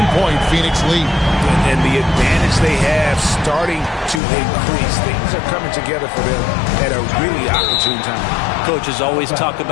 Phoenix lead. And the advantage they have starting to increase. Things are coming together for them at a really opportune time. Coaches always talk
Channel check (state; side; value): drops out; right; at 4.2 s